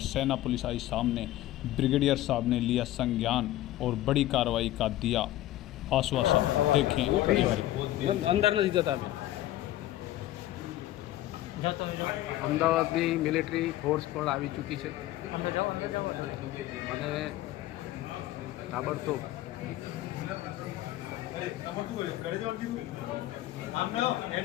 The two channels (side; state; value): right; quieter; 14.9 dB